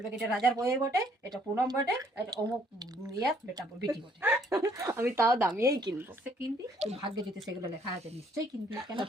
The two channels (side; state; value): both; normal; correlation 0.64